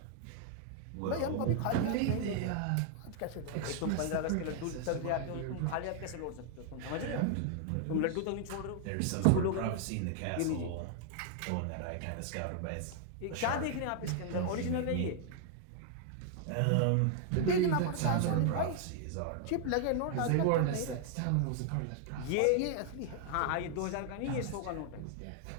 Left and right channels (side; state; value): both; different; correlation 0.00